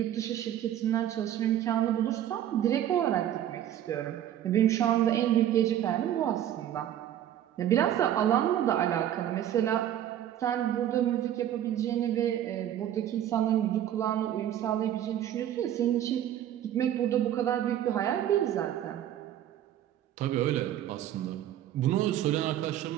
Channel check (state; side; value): quieter; left; 11.4 dB